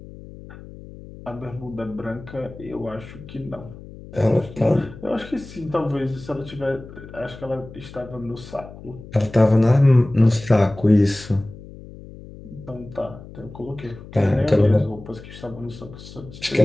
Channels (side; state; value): left; noise; hum, 16 dB below the sound